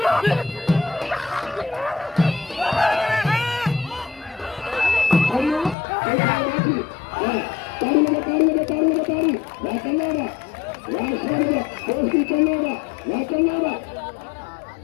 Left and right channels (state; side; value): drops out; right; at 5.8 s